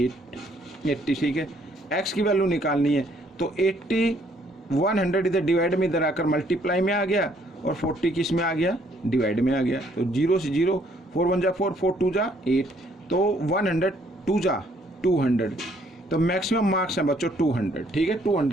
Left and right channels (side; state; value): both; normal; correlation 0.65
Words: 80। ठीक है, एक्स की वैल्यू निकालनी है, तो 80 100 इधर डिवाइड में इधर आकर मल्टीप्लाई में आ गया और 40 किस में आ गया, डिवाइड में आ गया। तो 0 से 0, 4 1 जा 4, 4 2 जा 8, तो 100 2 जा 200, तो मैक्सिमम मार्क्स है बच्चों 200। ठीक है,